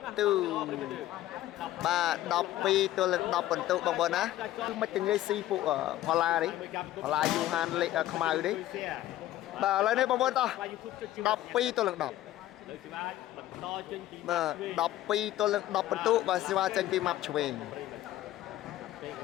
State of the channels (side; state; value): right; quieter; 14.2 dB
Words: ទុបាទ12 ទល់នឹង 10 ពិន្ទុបងប្អូនណាគឺមិនទាំងងាយស៊ីពួកផល្លានេះផល្លាយូហានលេខខ្មៅនេះបាទឥឡូវនេះបងប្អូនតោះ12 ទល់នឹង 10បាទ12 ទល់នឹង 10 ពិន្ទុបាទសេវាចេញពីម៉ាប់ឆ្វេង